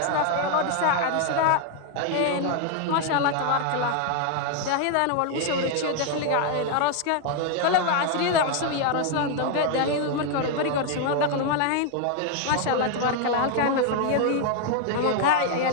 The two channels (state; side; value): different; both; correlation 0.00